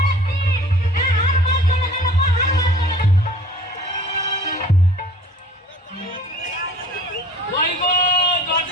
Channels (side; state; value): both; normal; correlation 0.48